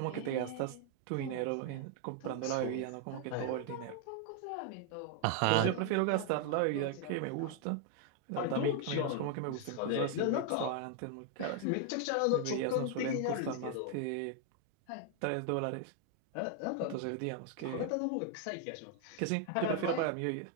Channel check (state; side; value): different; both; correlation 0.00